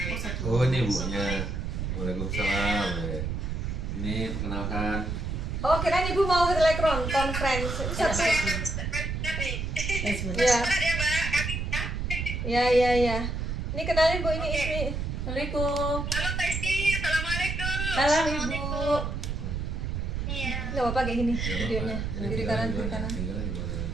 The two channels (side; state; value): right; noise; rumble, 2 dB below the sound